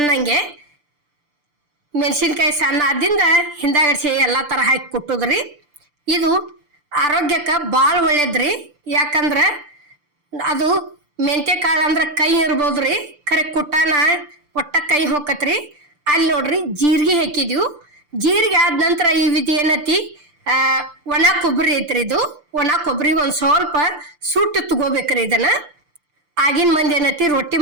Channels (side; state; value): left; late; 6.8 ms